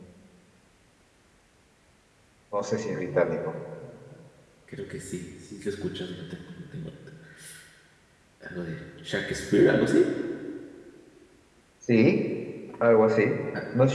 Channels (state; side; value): identical; both; correlation 1.00